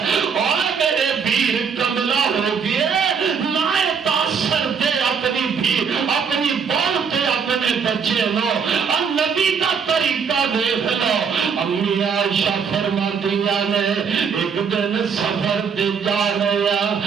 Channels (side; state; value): left; quieter; 6.3 dB